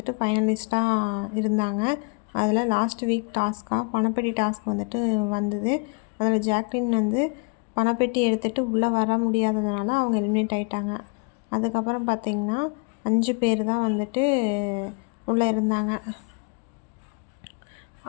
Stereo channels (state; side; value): quieter; right; 34.6 dB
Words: ஃபைனலிஸ்ட்டாக இருந்தாங்க. அதில் லாஸ்ட் வீக் பணப்பெட்டி டாஸ்க் வந்தது. அதில் ஜாக்லின் பணப்பெட்டி எடுத்துகிட்டு உள்ளே வர முடியாததுனால அவங்க எலிமினேட் ஆகிட்டாங்க. அதுக்கப்புறம் பார்த்திங்கன்னா 5 பேர் தான் உள்ளே இருந்தாங்க.